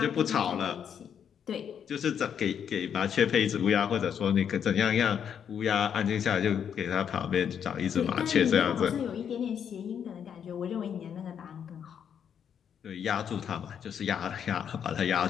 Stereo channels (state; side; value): quieter; right; 8.2 dB